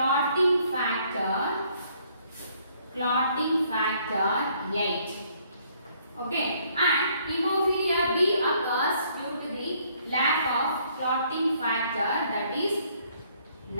factor 8. Okay, and hemophilia B occurs due to the lack of clotting factor, that is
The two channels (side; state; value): both; inverted; correlation -0.66